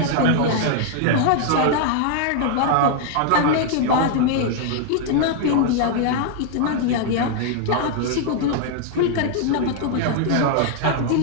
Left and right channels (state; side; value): different; both; correlation 0.00